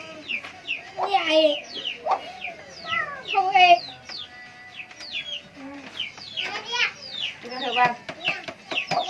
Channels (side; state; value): both; identical; correlation 1.00